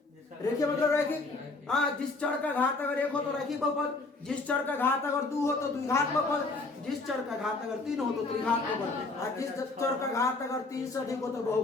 रेखीय मतलब रैखिक। हाँ, जिस चर का घात अगर 1 हो तो रैखिक बहुपद, जिस चर का घात अगर 2 हो तो द्विघात बहुपद, जिस चर का घात अगर 3 हो तो त्रिघात बहुपद, और जिस चर का घात अगर 3 से अधिक हो तो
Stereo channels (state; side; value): quieter; right; 3.5 dB